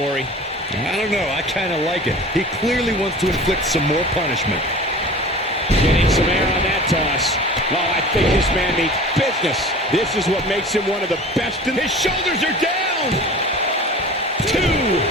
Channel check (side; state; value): both; normal; correlation 0.39